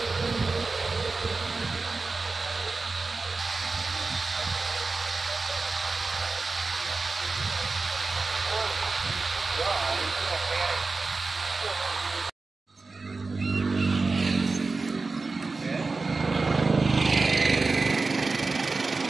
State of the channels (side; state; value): left; quieter; 3.9 dB